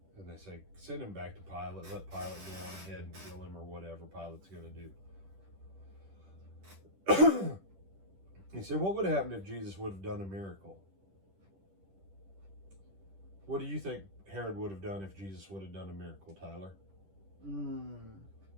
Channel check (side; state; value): left; late; 10 ms